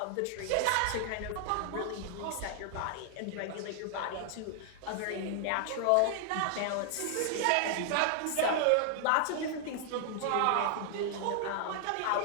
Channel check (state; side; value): different; both; correlation 0.00